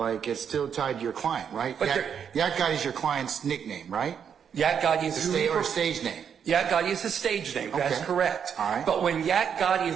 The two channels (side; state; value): left; quieter; 7.7 dB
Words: it's still tied to your client, right? But Yak Gotti's your client's nickname, right? Yak Gotti is who he Or stage name. Yak Gotti is his stage name. That's Okay. correct. All right. But when Yak Gotti